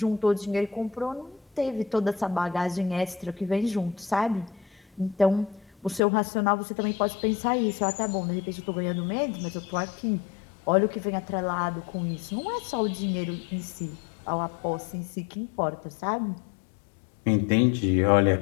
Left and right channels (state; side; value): drops out; right; at 6.0 s